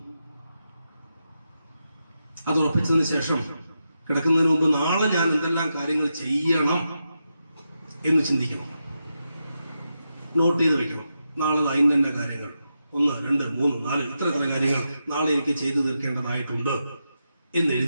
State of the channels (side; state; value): both; inverted; correlation -0.87